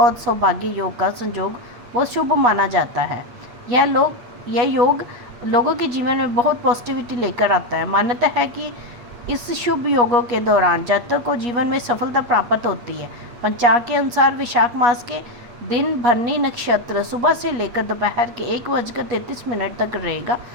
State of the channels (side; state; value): left; late; 8.3 ms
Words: सौभाग्य योग का संयोग बहुत शुभ माना जाता है। यह योग लोगों के जीवन में बहुत पॉजिटिविटी लेकर आता है। मान्यता है कि इस शुभ योगों के दौरान जातक को जीवन में सफलता प्राप्त होती है। पंचांग के अनुसार विशाख मास के दिन भरनी नक्षत्र सुबह से लेकर दोपहर के 1:33 तक रहेगा